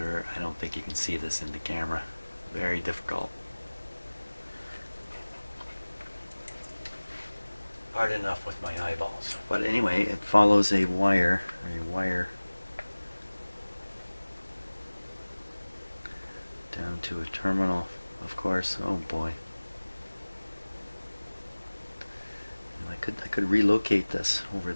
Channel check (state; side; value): inverted; both; correlation -1.00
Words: I don't think you can see this in the camera. Very difficult. Hard enough with my eyeballs. But anyway, it follows a wire down to a terminal, of course. Oh boy. I could relocate this over